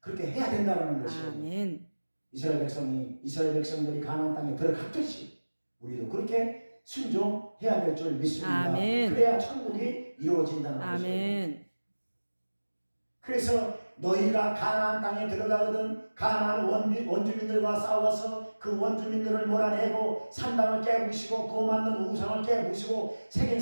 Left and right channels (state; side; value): inverted; both; correlation -1.00